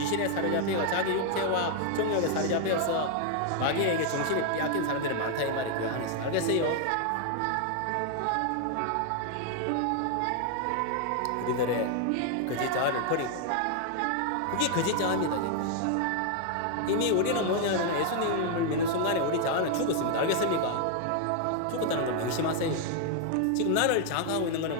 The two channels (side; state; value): both; different; correlation 0.00